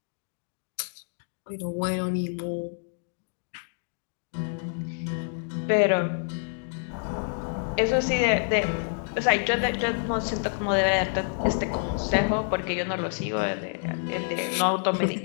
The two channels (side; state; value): right; silent; 60 dB below the other